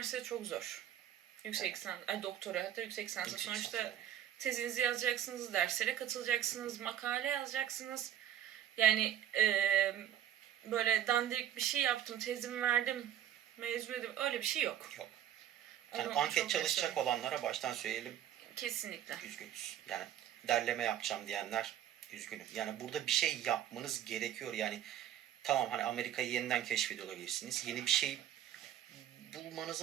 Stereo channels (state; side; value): quieter; left; 10.9 dB